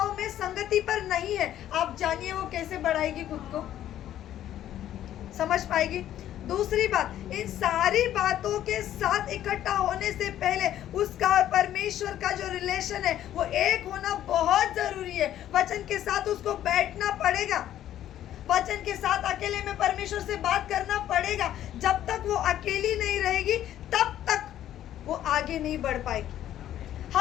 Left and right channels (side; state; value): right; quieter; 11.9 dB